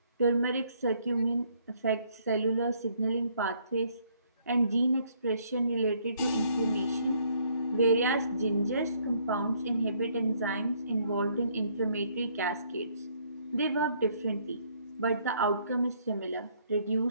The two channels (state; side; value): inverted; both; correlation -0.67